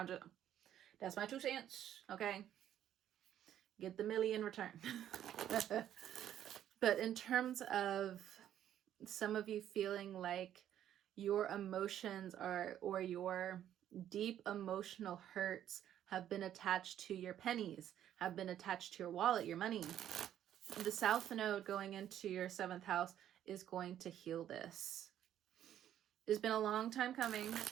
that's my 2 cents, okay? Get the milli in return. But in terms of some of you feeling like your emotions or your deep emotional hurts have been attached to your pennies, have been attached to your wallet, your money. The South Node going into your 7th house is going to heal this. It's been a long time coming.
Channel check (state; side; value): quieter; left; 11.0 dB